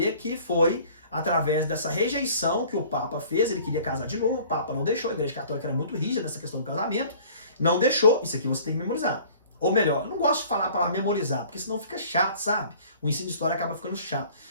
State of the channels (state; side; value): inverted; both; correlation -0.50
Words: que foi através dessa rejeição que o Papa fez. Ele queria casar de novo, o Papa não deixou. A Igreja Católica era muito rígida nessa questão do casamento. Não deixou. Isso aqui você tem que memorizar. Ou melhor, eu não gosto de falar para memorizar, porque senão fica chato, sabe? O ensino de história acaba ficando chato.